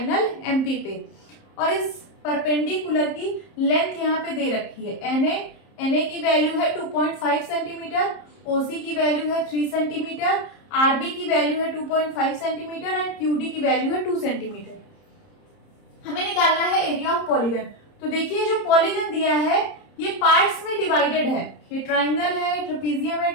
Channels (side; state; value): right; late; 30 ms